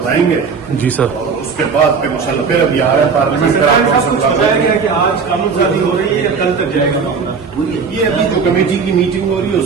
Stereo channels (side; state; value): left; quieter; 5.5 dB